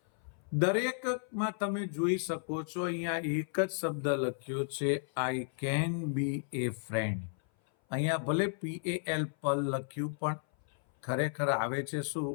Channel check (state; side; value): silent; right; 56 dB below the other